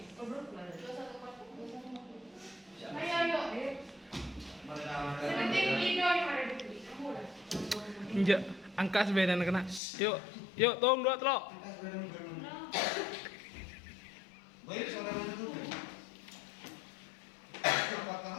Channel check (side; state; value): right; drops out; at 9.8 s